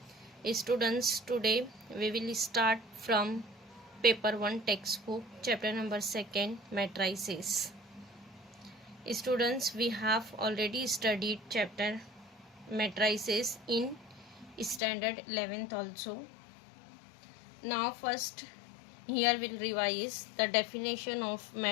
Today we will start from paper 1 textbook chapter number 2 matrices. Students, we have already studied chapter matrices in standard 11th also. Now first here we'll revise the definition of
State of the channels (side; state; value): right; drops out; at 14.8 s